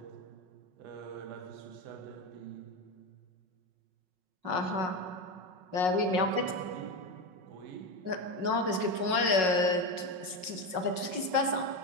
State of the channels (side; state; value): left; late; 5.4 ms